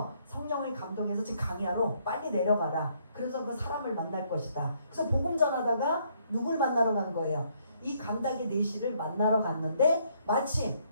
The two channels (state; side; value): inverted; both; correlation -0.69